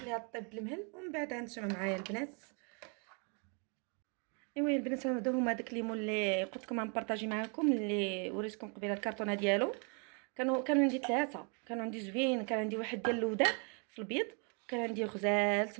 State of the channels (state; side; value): quieter; left; 36.8 dB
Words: طيب بالمهل. ومن بعد هانتوما معايا البنات. ايوا البنات هادو هما داك الليمون اللي قلت لكم غنبارطاجي معكم، اللي وريتكم قبيله الكرتونه ديالو. كانوا عندي 3، كانوا عندي زوين. كان عندي واحد ديال اللودان في البيض، وكان عندي غزال